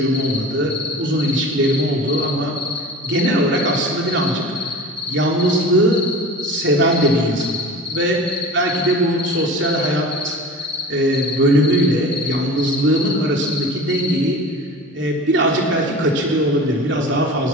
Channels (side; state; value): both; normal; correlation 0.37